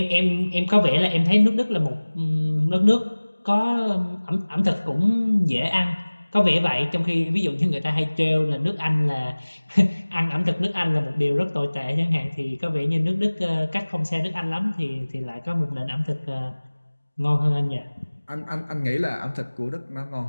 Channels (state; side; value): inverted; both; correlation -1.00